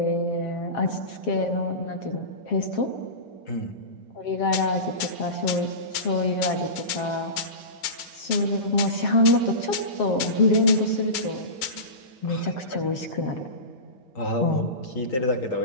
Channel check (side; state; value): right; late; 7.4 ms